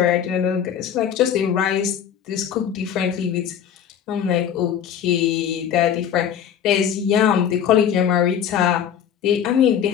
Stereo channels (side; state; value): right; quieter; 8.8 dB